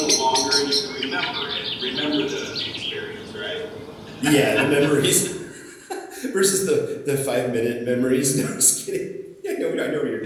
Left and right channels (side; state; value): both; identical; correlation 1.00